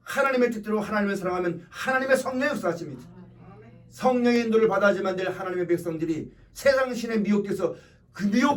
하나님의 뜻대로 하나님을 사랑하면 하나님의 성령이 역사하십니다. 성령의 인도를 받아야지만 될 하나님의 백성들이 세상 신에 미혹돼서 그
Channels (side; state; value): both; identical; correlation 1.00